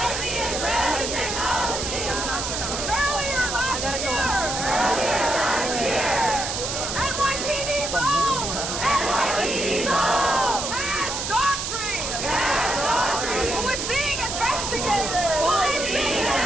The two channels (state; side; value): noise; right; hiss, 3 dB below the sound